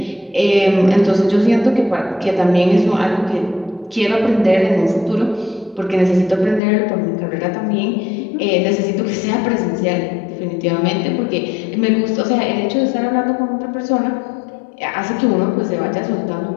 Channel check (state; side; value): drops out; right; at 6.6 s